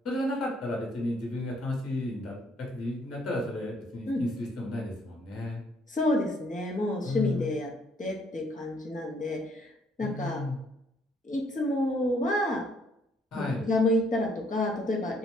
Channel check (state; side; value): normal; both; correlation 0.66